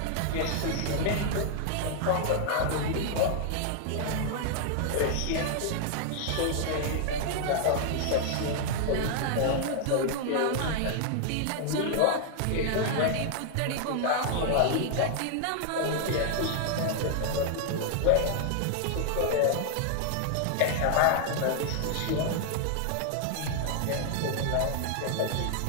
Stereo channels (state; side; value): different; both; correlation 0.00